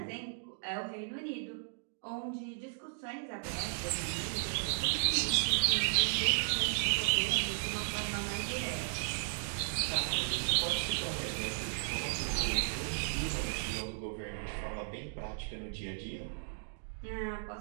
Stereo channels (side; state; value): left; silent; digital silence